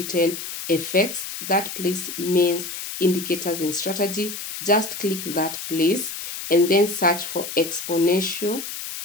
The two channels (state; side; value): noise; left; hiss, 7 dB below the sound